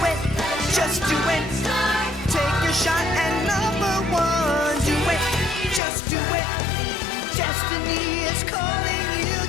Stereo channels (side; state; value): right; drops out; at 5.8 s